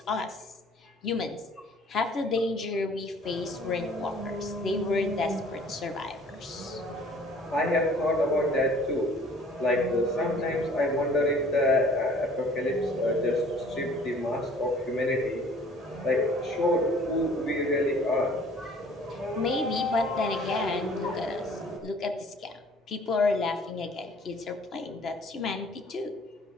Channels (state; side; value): normal; both; correlation 0.53